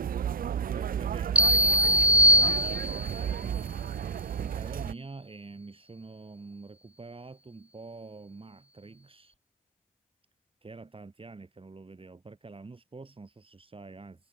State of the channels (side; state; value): both; normal; correlation -0.11